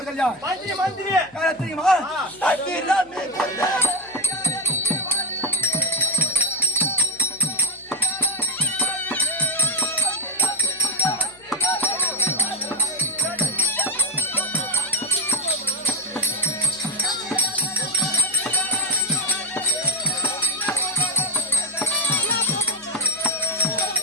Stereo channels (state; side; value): noise; left; hum, 27 dB below the sound